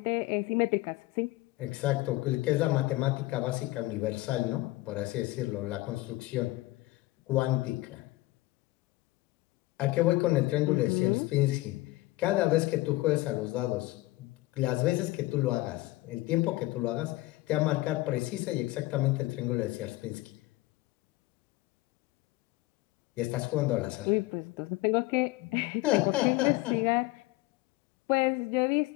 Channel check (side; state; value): right; quieter; 19.4 dB